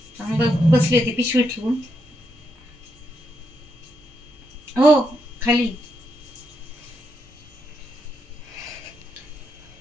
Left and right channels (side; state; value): both; normal; correlation 0.81